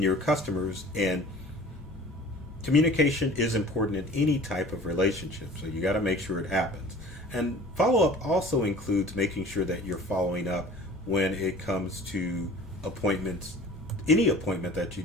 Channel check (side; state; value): both; normal; correlation 0.45